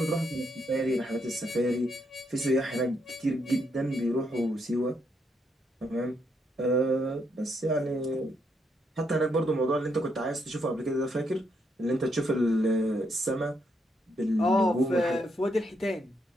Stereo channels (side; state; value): both; normal; correlation 0.77